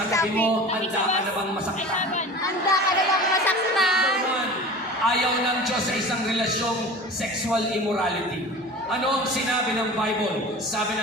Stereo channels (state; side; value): normal; both; correlation 0.37